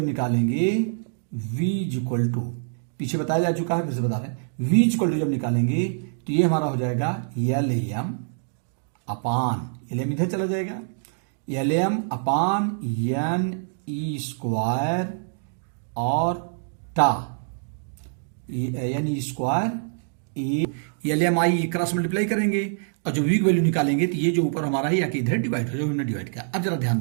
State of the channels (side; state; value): left; silent; digital silence